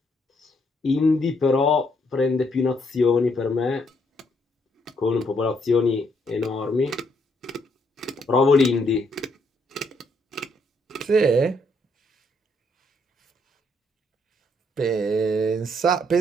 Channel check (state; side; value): normal; both; correlation 0.72